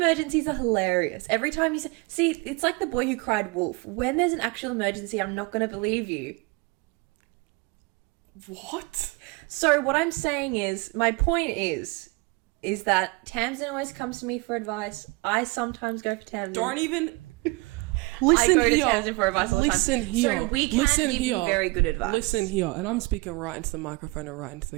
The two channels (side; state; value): left; quieter; 25.5 dB